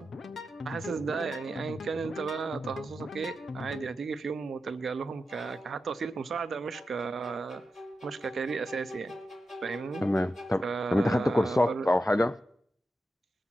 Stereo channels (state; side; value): normal; both; correlation 0.89